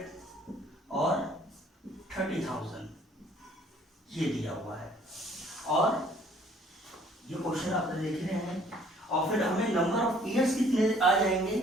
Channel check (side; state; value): both; normal; correlation 0.58